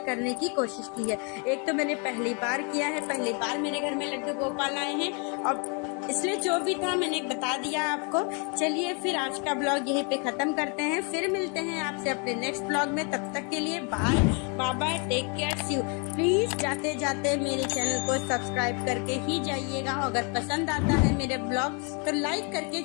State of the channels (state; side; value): quieter; right; 35.8 dB